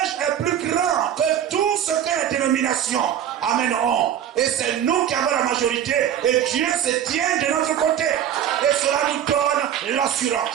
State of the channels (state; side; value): quieter; left; 10.0 dB